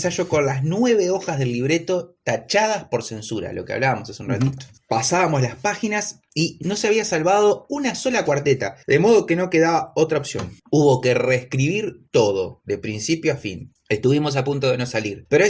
con las 9 hojas del libreto tachadas por censura, lo que hablábamos hace un ratito. Pasábamos las páginas y no se había salvado una sola cuarteta, de modo que no quedaba otra opción. Hubo que reescribir todo, de principio a fin. Estuvimos a punto de no salir. Pero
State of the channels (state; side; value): identical; both; correlation 1.00